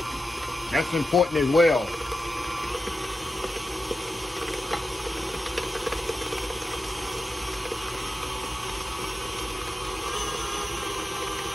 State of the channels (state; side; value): normal; both; correlation 0.90